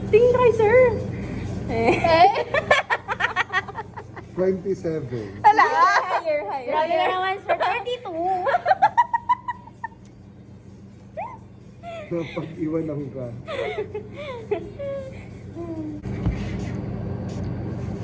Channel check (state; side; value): identical; both; correlation 1.00